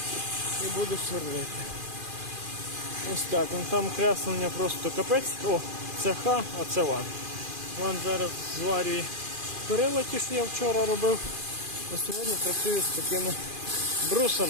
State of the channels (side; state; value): left; late; 2.4 ms